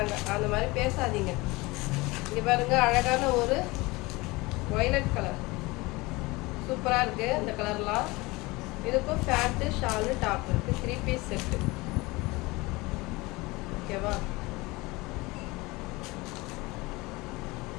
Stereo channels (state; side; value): quieter; right; 22.8 dB